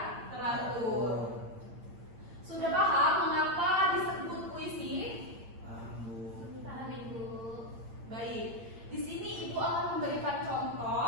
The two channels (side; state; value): left; late; 8.7 ms